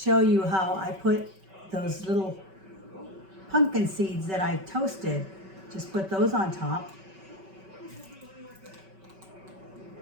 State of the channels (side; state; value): left; late; 5.2 ms